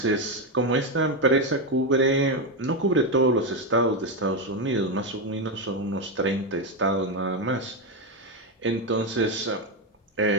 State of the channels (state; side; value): normal; both; correlation 0.08